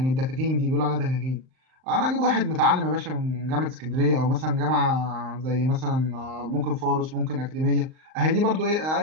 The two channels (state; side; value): late; left; 38 ms